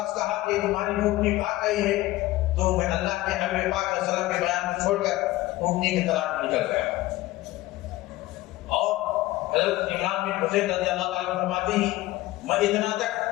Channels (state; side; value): quieter; right; 17.6 dB